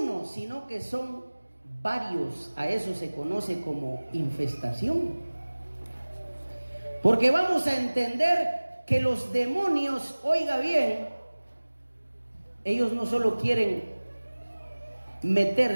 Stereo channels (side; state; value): both; inverted; correlation -1.00